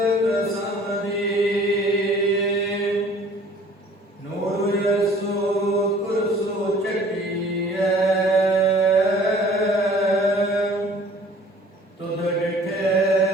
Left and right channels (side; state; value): both; normal; correlation 0.52